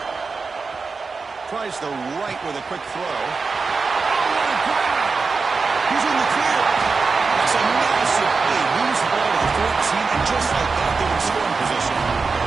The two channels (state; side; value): quieter; left; 4.6 dB